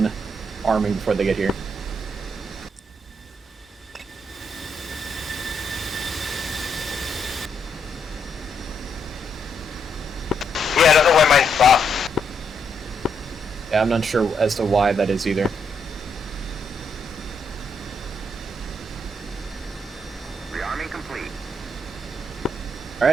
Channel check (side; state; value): both; normal; correlation 0.77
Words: arming before they get here. Yeah, I don't know why mine stopped. Yeah, I'm not sure as to why that is either. Rearming complete.